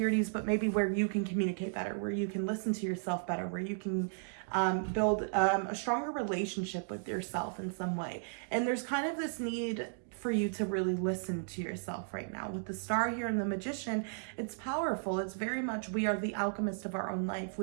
but maybe where you can communicate better, where you can listen to yourself better, where you can build a stronger relationship with yourself in some way. And there's kind of this need for you to really listen to yourself right now. With the star here and the magician, it's powerful. It's very much, we are the alchemist of our own life.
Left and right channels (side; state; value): left; silent; digital silence